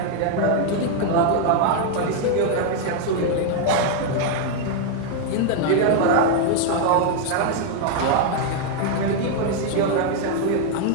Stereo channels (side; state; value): both; different; correlation 0.00